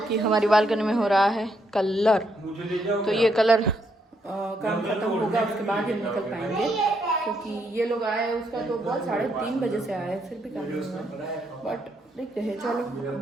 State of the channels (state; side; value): normal; both; correlation 0.75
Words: हमारी बालकनी में हो रहा है कलर। मुझे ले जाओ। तो ये कलर काम खत्म होगा उसके बाद ही हम निकल पाएंगे, क्योंकि ये लोग आए उसका तो बहुत 3:30 बजे से आए, फिर भी काम नहीं हुआ। बट देखते हैं, चलो